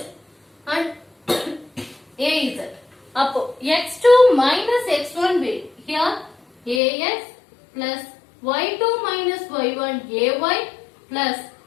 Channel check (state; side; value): drops out; right; at 6.8 s